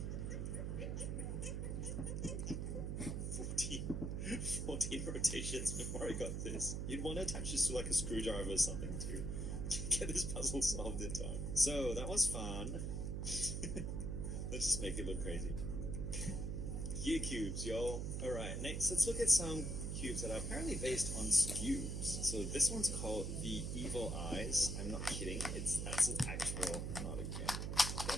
14 rotations before I got this. You'd want to attach this to like a screwdriver or something to get this puzzle solved in time. So, that was fun. Let's just make it look crazy. Gear cubes, y'all. Alright, next let's look at some cubes that are apparently based on cubes. So this one's called the Evil Eyes. I'm not kidding. That's its actual... Not again.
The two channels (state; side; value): noise; right; hum, 2 dB below the sound